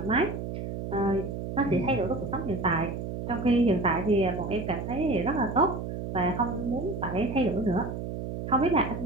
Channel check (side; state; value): right; noise; hum, 6 dB below the sound